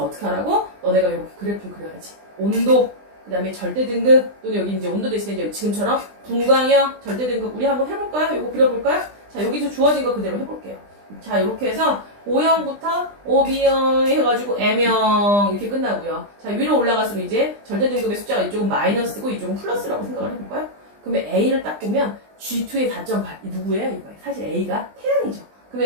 어떻게 하라고? 너네가 이렇게 그래프를 그려야지. 온도, 그 다음에 절대 등급, 또는 여기 이제 온도 대신에 이제 지금처럼 분광형, 절대 등급 우리 한번 해볼까요? 이거 그려볼까요? 자, 여기서 주어진 거 그대로 해볼게요. 자, 이렇게 해서 O형부터 OB형 해가지고 M형 이렇게 끝나고요. 자, 위로 올라갈수록 이제 절대 등급의 숫자가 이쪽은 마이너스고 이쪽은 플러스라고 생각을 해볼까요? 그러면 A를 딱 보면 G2의 4.8 누구예요? 이거 사실 A가 태양이죠.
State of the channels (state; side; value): late; left; 20 ms